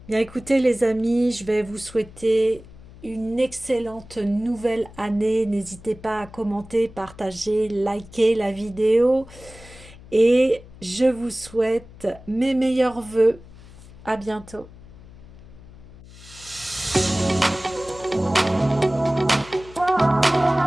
Bien écoutez les amis, je vais vous souhaiter une excellente nouvelle année. N'hésitez pas à commenter, partager, liker la vidéo. Et je vous souhaite mes meilleurs vœux. À bientôt.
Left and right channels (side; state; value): left; noise; hum, 20 dB below the sound